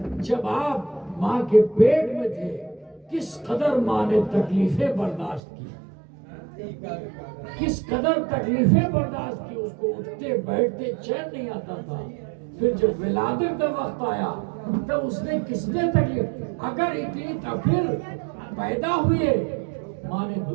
جب آپ ماں کے پیٹ میں تھے کس قدر ماں نے تکلیفیں برداشت کی، کس قدر تکلیفیں برداشت کی، اس کو اٹھتے بیٹھتے چین نہیں آتا تھا۔ پھر جب ولادت کا وقت آیا تب اس نے کس نے تکلیف، اگر اتنی پھر پیدا ہوئے ماں نے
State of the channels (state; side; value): drops out; left; at 5.4 s